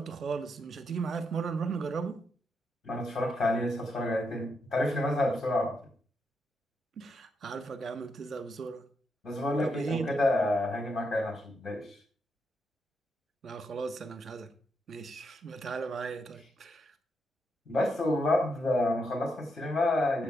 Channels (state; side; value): normal; both; correlation 0.81